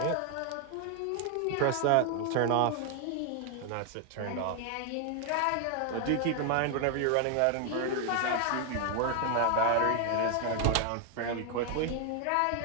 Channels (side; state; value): both; different; correlation 0.00